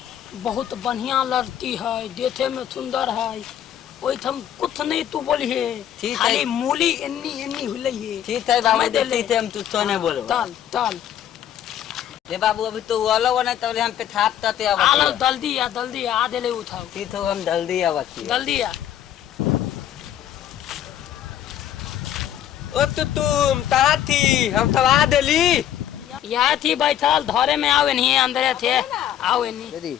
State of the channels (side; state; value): right; quieter; 10.8 dB